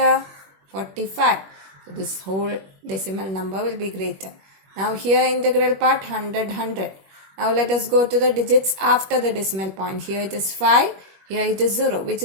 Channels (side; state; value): left; late; 21 ms